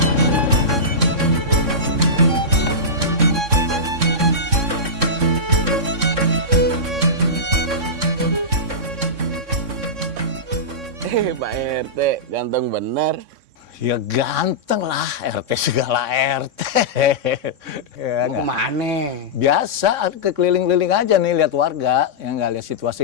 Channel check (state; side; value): late; left; 3.6 ms